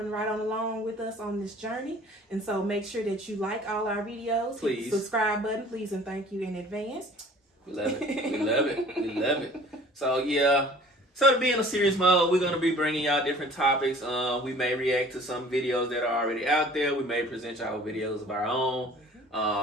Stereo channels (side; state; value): both; normal; correlation 0.49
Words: right on along with us on this journey. And so make sure that you like all our videos. Please. Hit the subscribe button, please, and thank you in advance. We love it. We love it. We love it. So, yeah. So to be in a serious mode, we're going to be bringing y'all different topics. We may react to some videos that are already out there. We may present y'all videos of our own.